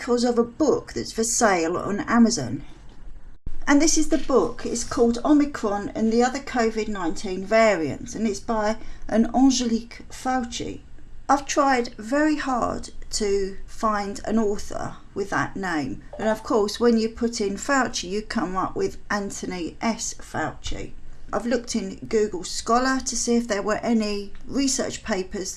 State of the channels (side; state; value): both; identical; correlation 1.00